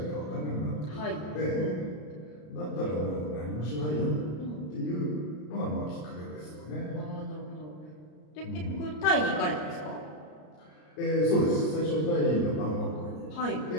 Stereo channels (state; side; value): late; right; 33 ms